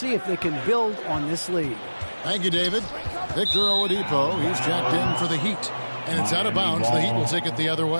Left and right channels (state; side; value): inverted; both; correlation -1.00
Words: if they can build on this lead. Thank you, David. Victor Oladipo, he's jacked in for the Heat. And it's out of bounds. The Heat will take it the other